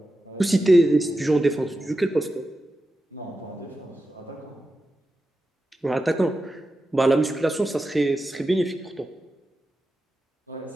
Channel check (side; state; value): both; normal; correlation 0.91